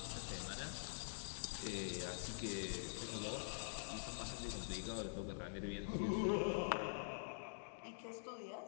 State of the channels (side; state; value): right; silent; digital silence